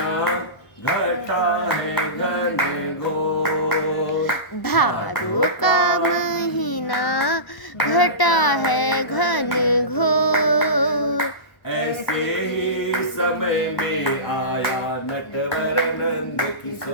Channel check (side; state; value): right; late; 1.0 ms